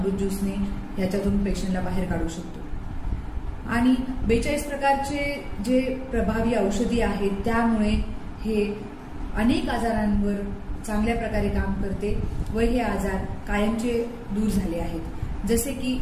ज्यूसने याच्यातून पेशंटला बाहेर काढू शकतो। आणि 42 प्रकारचे जे प्रभावी औषधी आहेत त्यामुळे हे अनेक आजारांवर चांगल्या प्रकारे काम करते व हे आजार कायमचे दूर झाले आहेत। जसे की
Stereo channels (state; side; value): identical; both; correlation 1.00